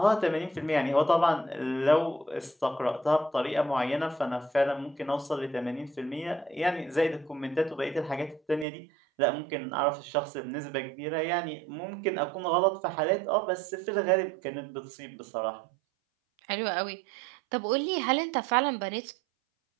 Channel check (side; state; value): left; drops out; at 8.7 s